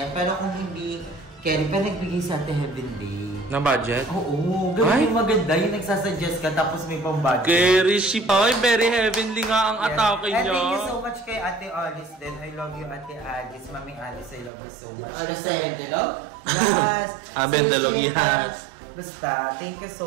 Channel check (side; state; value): left; drops out; at 14.5 s